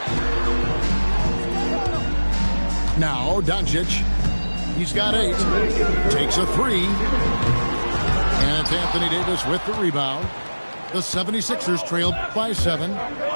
Now, Doncic. He's got 8. Takes a 3. And it's Anthony Davis with the rebound. The 76ers trailed by 7.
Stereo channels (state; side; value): inverted; both; correlation -1.00